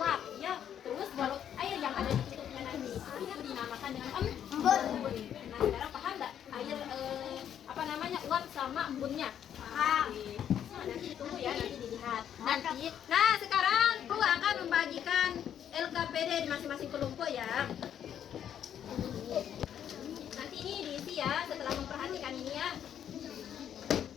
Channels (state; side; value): quieter; right; 9.5 dB